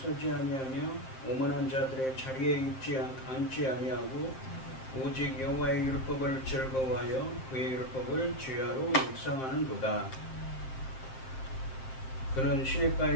아니하며 오만한 자들의 자리에 앉지 아니하고 오직 여호와의 율법을 즐거워하여 그의 율법을 주야로 묵상하는도다. 그는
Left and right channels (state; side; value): late; right; 7.6 ms